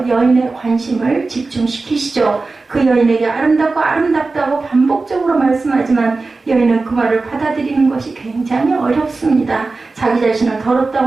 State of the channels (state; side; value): quieter; left; 3.7 dB